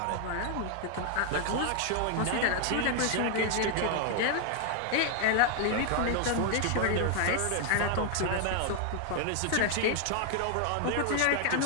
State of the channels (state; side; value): different; both; correlation 0.00